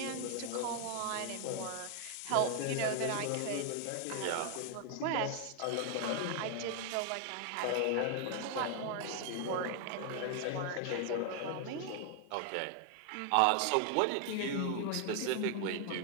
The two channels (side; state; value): both; different; correlation 0.00